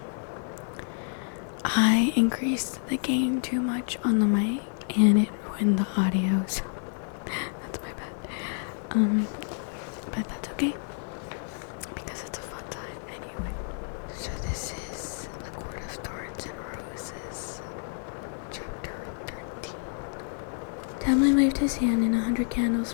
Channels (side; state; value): right; silent; 59 dB below the other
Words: I increased the gain too much on the mic and it ruined the audio, so that's my bad. But that's okay because it's a fun time anyway. So this is A Court of Thorns and Roses, chapter 13. Tamlin waved his hand and 100 candles